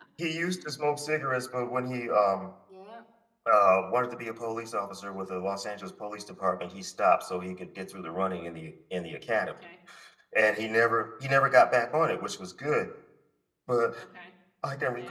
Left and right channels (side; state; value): both; identical; correlation 1.00